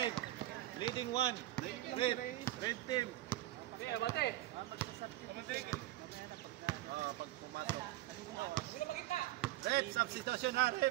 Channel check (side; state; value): left; quieter; 15.9 dB